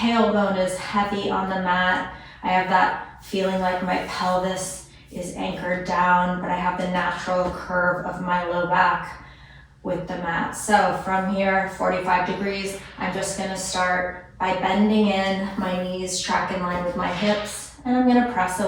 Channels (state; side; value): identical; both; correlation 1.00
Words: is heavy on the mat. I have that feeling like my pelvis is anchored down, but I have the natural curve of my low back with the mat. So from here, 45 degrees, I'm just gonna start by bending in, my knees track in line with my hips, and I'm gonna press